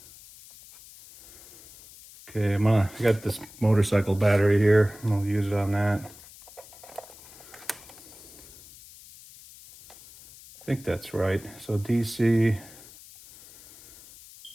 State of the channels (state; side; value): noise; left; hiss, 20 dB below the sound